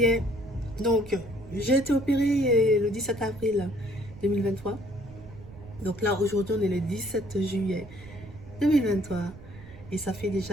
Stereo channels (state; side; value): noise; right; rumble, 18 dB below the sound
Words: est. Donc, j'ai été opérée le 17 avril 2023. Donc là, aujourd'hui, on est le 17 juillet 2023. Et ça fait